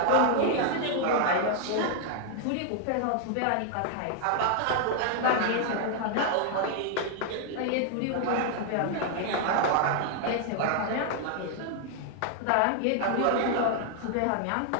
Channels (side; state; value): both; different; correlation 0.00